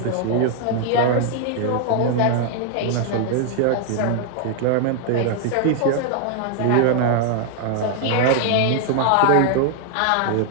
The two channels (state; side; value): different; both; correlation 0.00